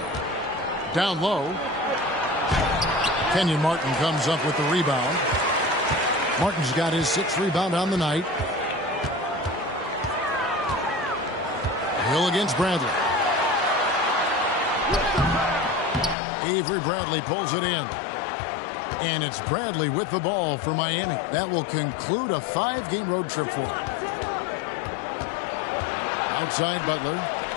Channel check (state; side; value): drops out; right; at 16.2 s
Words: Down low. Kenyon Martin comes up with the rebound. Martin's got his 6th rebound on the night. Hill against Bradley. Avery Bradley pulls it in. And it's Bradley with the ball for Miami. That will conclude a 5-game road trip for him. Outside Butler.